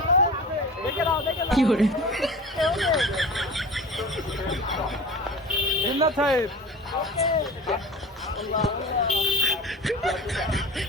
কি করে জিন্নাত সাহেব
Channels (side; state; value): both; normal; correlation 0.34